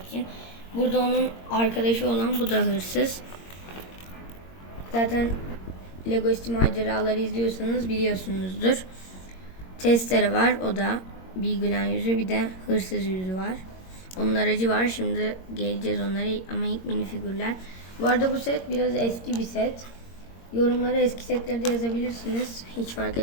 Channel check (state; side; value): late; right; 22 ms